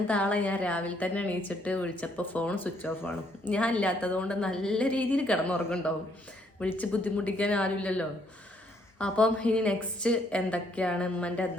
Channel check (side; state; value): both; normal; correlation 0.69